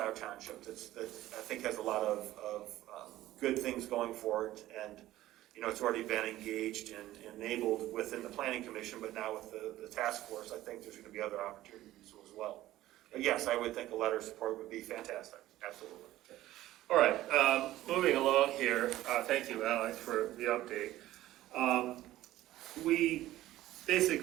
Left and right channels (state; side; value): quieter; left; 15.1 dB